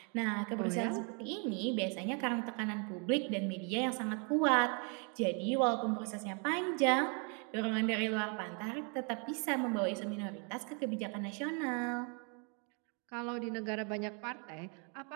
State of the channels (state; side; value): quieter; left; 36.9 dB